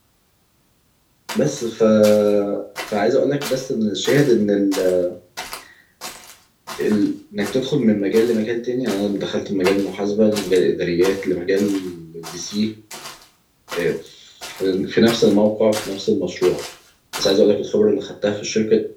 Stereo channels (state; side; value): identical; both; correlation 1.00